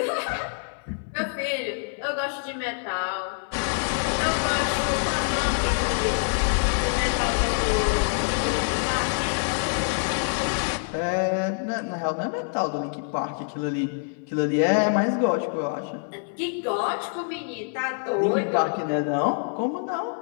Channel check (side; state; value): right; silent; 61 dB below the other